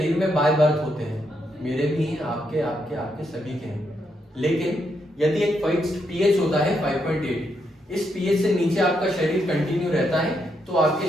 में बाय बर्थ होते हैं, मेरे भी हैं, आपके आपके आपके सभी के हैं। लेकिन यदि एक फिक्स्ड पीएच होता है 5.8, इस पीएच से नीचे आपका शरीर कंटिन्यू रहता है तो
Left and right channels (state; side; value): normal; both; correlation 0.79